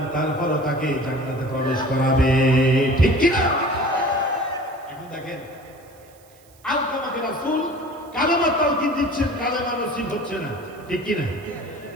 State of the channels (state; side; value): noise; right; hiss, 28 dB below the sound